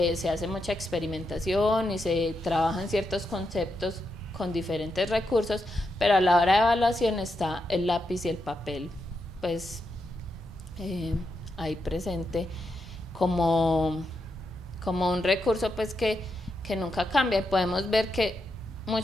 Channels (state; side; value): normal; both; correlation 0.84